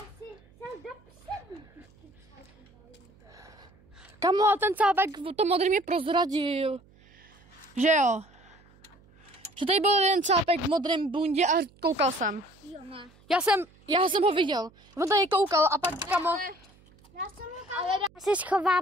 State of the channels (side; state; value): right; noise; hum, 28 dB below the sound